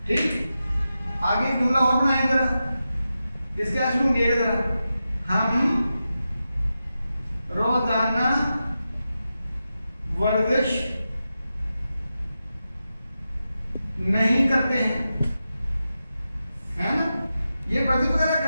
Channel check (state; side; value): inverted; both; correlation -0.90